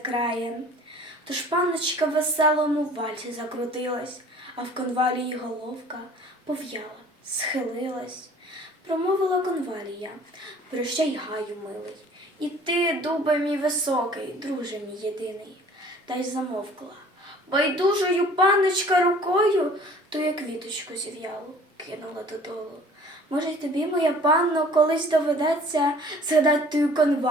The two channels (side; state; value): both; normal; correlation 0.50